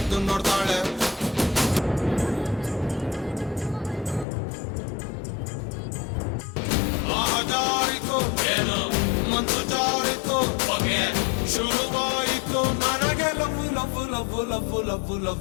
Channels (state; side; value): drops out; right; at 4.2 s